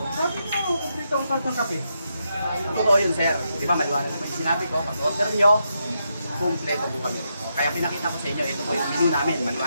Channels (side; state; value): both; inverted; correlation -0.82